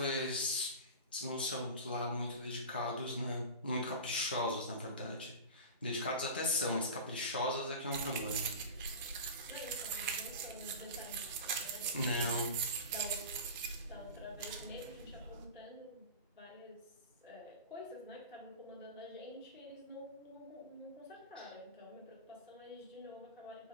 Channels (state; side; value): inverted; both; correlation -0.30